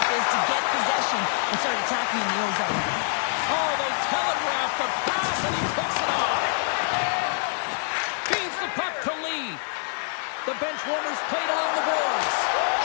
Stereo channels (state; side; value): silent; right; 61 dB below the other